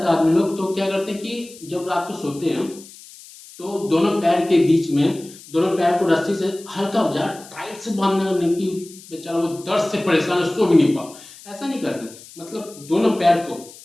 है आदमी लोग। तो क्या करते हैं कि जब रात को सोते हैं तो दोनों पैर के बीच में, दोनों पैर को रस्सी से हल्का टाइट से बांधने की, बेचारा वो दर्द से परेशान है, सो भी नहीं पा, ऐसा नहीं करना। मतलब दोनों पैर को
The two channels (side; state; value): left; noise; hiss, 19 dB below the sound